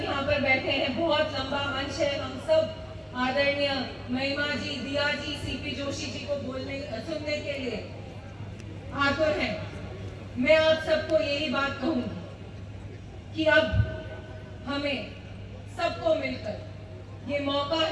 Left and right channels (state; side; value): identical; both; correlation 1.00